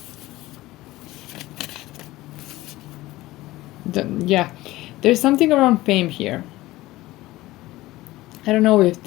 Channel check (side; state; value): right; quieter; 17.8 dB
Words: Yeah, there's something around fame here. I don't know if